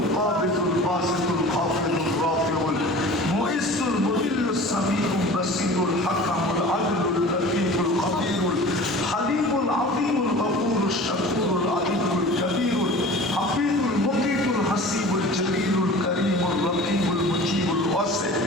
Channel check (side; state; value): both; normal; correlation 0.40